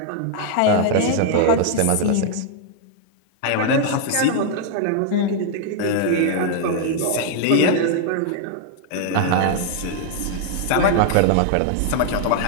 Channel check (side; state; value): both; different; correlation -0.01